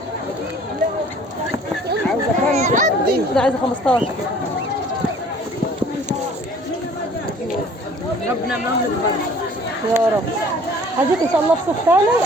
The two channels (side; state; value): both; normal; correlation 0.52